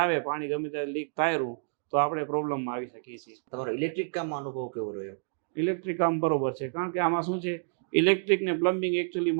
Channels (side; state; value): left; silent; digital silence